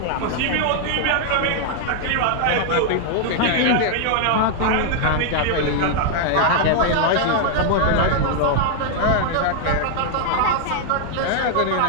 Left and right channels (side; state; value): both; different; correlation 0.00